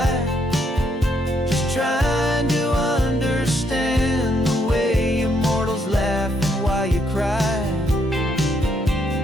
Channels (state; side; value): normal; both; correlation 0.74